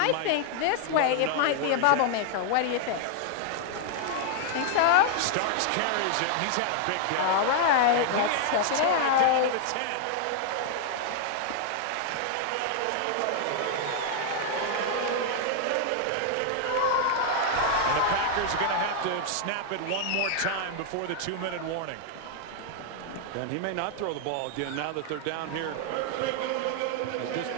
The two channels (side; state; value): both; different; correlation 0.00